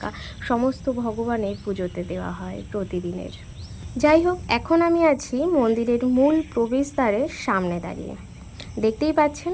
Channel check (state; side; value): identical; both; correlation 1.00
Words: সমস্ত ভগবানের পুজোতে দেওয়া হয় প্রতিদিনের। যাই হোক, এখন আমি আছি মন্দিরের মূল প্রবেশদ্বারের সামনে দাঁড়িয়ে। দেখতেই পাচ্ছেন